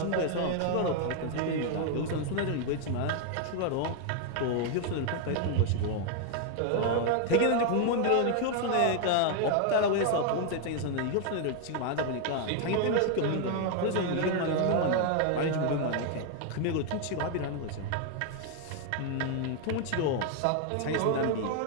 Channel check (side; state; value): both; different; correlation 0.00